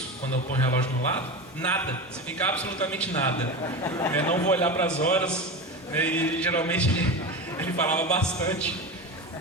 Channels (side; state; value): both; normal; correlation 0.24